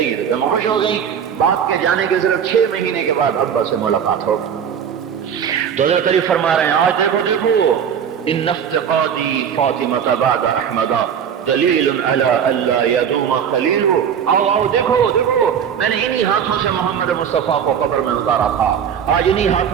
گی۔ تو پھر خوش ہو گئی۔ باپ کے جانے کے صرف 6 مہینے کے بعد ابا سے ملاقات ہو۔ تو حضرت علی فرما رہے ہیں آج دیکھو ان افتقادی فاطمہ بعد احمد دلیل علی اللہ یدوم خلیل۔ آؤ دیکھو میں نے انہی ہاتھوں سے محمد مصطفیٰ کو قبر میں اتارا تھا، آج انہی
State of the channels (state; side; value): quieter; left; 8.1 dB